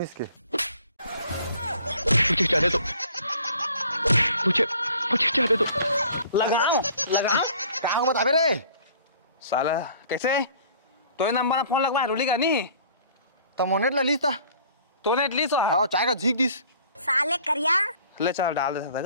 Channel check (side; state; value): both; inverted; correlation -0.53